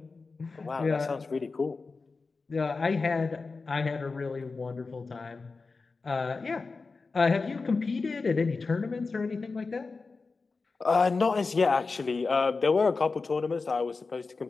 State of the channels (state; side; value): quieter; right; 4.2 dB